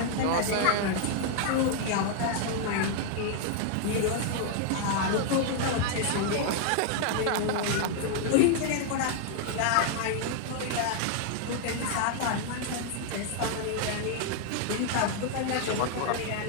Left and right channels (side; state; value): both; different; correlation 0.00